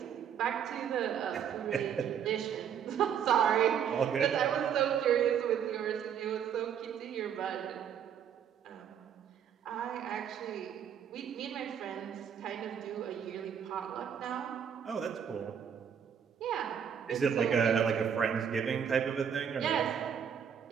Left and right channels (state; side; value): quieter; left; 8.2 dB